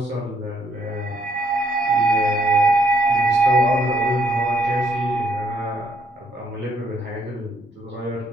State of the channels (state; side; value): normal; both; correlation 0.72